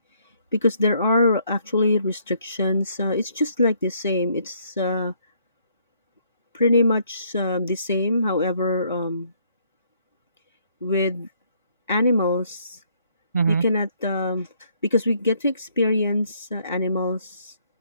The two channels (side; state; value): both; inverted; correlation -0.67